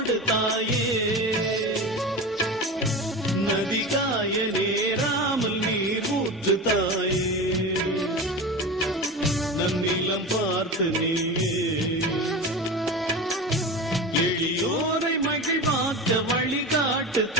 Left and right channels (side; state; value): both; normal; correlation 0.27